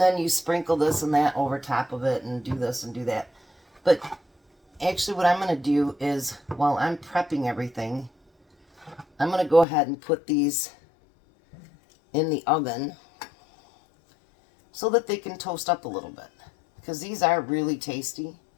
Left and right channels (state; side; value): drops out; right; at 9.7 s